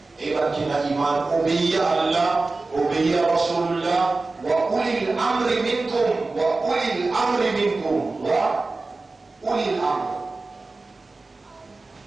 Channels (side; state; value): left; quieter; 3.5 dB